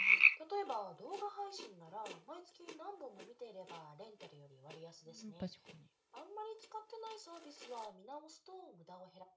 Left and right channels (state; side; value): identical; both; correlation 1.00